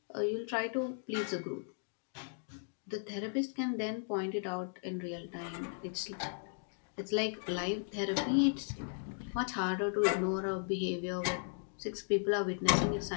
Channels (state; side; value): silent; right; digital silence